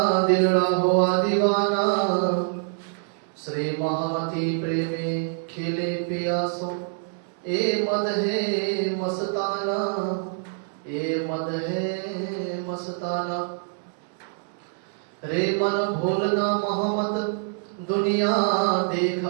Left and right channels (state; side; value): silent; left; digital silence